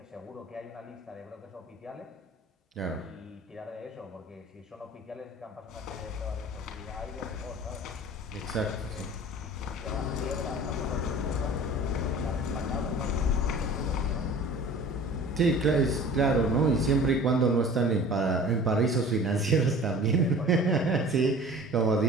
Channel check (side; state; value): both; normal; correlation 0.43